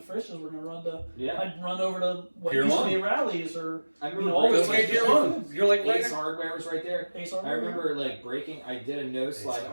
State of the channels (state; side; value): inverted; both; correlation -1.00